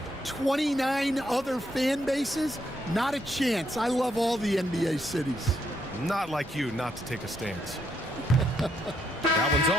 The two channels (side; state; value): both; normal; correlation 0.75